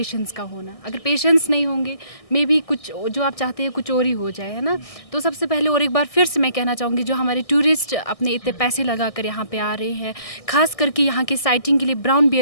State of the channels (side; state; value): right; late; 1.6 ms